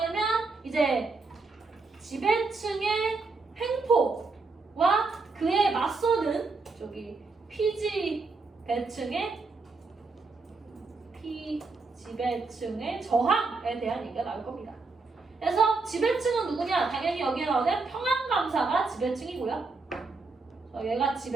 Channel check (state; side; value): quieter; left; 4.0 dB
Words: 이제 지배층의 횡포와 그에 맞서는 저기 지배층의 저항에 대한 얘기가 나올 겁니다. 그래서 지배층은 누구냐? 당연히 여기에 나오는 평안감사가 지배층이고요. 얘가